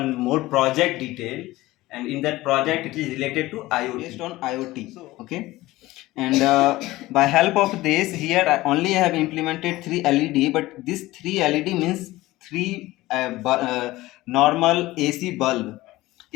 more project detail, and in that project it is related to IoT. Based on IoT. Okay, and by help of this here I only have implemented 3 LED, but this 3 LED means three normal AC bulb.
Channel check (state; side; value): quieter; right; 18.1 dB